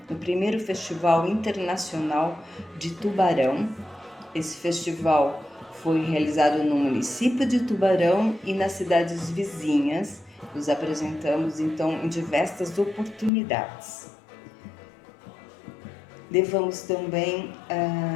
no 1º Festival Internacional de Tubarão. Esse festival foi realizado no município de Tubarão e nas cidades vizinhas. Nos apresentamos, então, em diversas oportunidades. Levamos também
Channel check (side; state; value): right; drops out; at 13.3 s